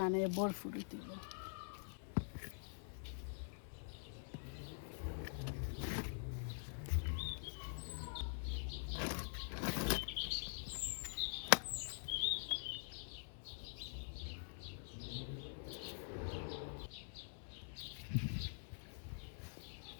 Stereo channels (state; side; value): silent; right; digital silence